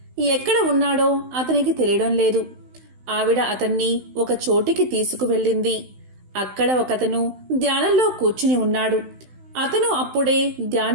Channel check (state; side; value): late; left; 16 ms